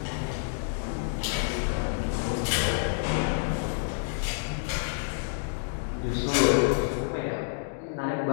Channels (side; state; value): right; silent; digital silence